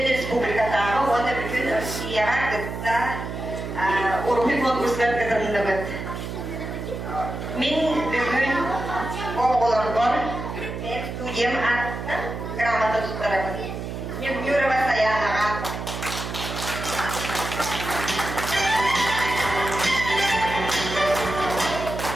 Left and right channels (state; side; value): noise; right; hum, 6 dB below the sound